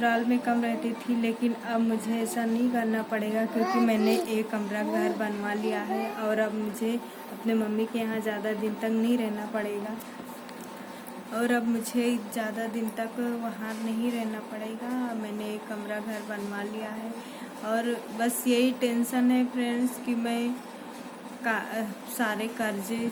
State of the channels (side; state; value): both; identical; correlation 1.00